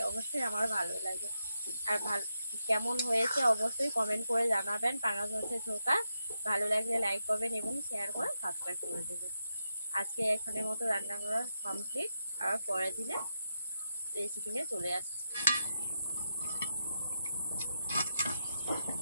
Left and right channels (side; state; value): both; inverted; correlation -0.84